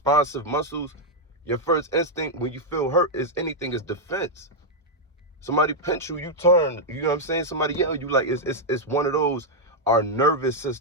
muscles, your first instinct when you feel hurt is defense. Somebody pinch you, you turn. You know what I'm saying? Somebody yell you, like it's one of those. Our nervous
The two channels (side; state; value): both; normal; correlation -0.02